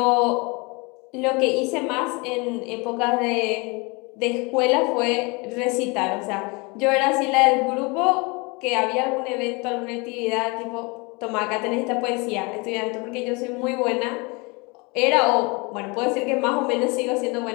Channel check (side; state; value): right; quieter; 28.2 dB